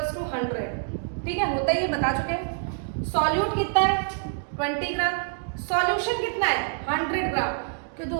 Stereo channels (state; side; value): silent; left; 61 dB below the other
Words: to 100, ठीक है, होता ही ये बता चुके हैं। सॉल्यूट कितना है 20 ग्राम, सॉल्यूशन कितना है 100 ग्राम, कि तो